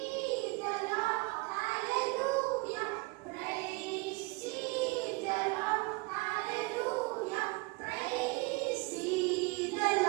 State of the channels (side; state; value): left; quieter; 26.1 dB